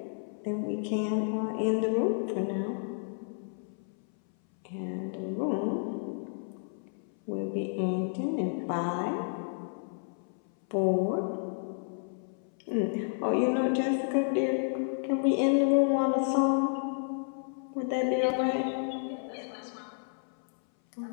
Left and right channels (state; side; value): silent; right; 57 dB below the other